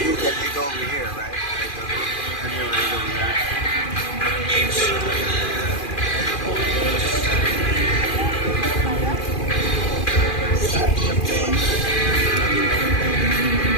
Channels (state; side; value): late; right; 2.4 ms